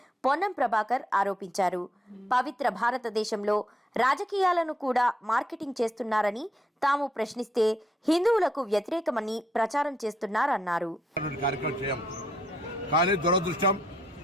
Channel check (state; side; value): normal; both; correlation 0.76